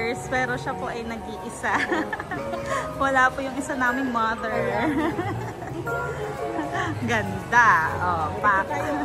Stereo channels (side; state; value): both; identical; correlation 1.00